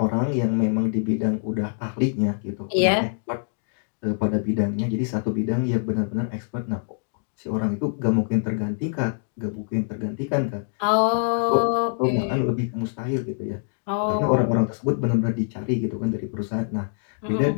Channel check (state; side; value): silent; right; digital silence